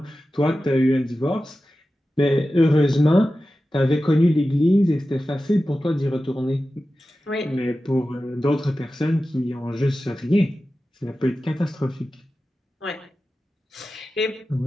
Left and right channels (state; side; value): normal; both; correlation 0.94